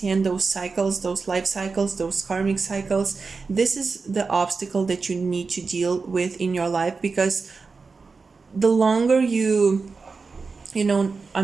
those cycles, those life cycles, those karmic cycles. This is the obstacle that you need to deal with in your life, because the longer you know are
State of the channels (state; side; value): quieter; left; 4.5 dB